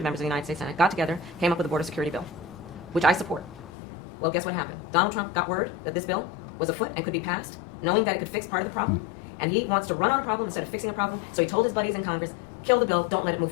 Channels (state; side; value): drops out; right; at 3.7 s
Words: members of the United States Senate, got together, came up with a border security bill, which I support. Well, guess what happened? Donald Trump got word that this bill was afoot and could be passed, knowing that it could fix part of the problem, and he wants to run on a problem instead of fixing a problem, so he told his buddies in Congress, kill the bill, don't let it move